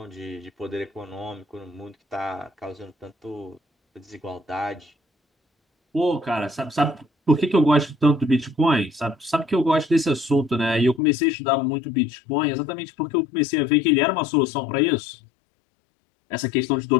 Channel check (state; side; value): drops out; right; at 11.0 s